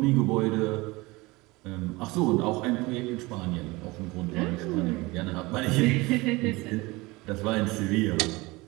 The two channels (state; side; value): quieter; left; 22.6 dB